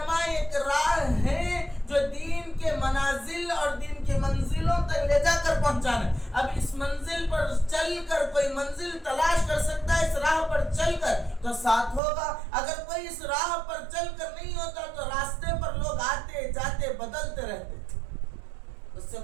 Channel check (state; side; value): drops out; left; at 12.0 s